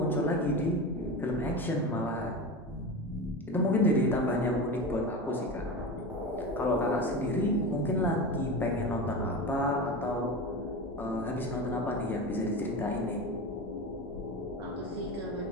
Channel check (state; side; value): normal; both; correlation 0.25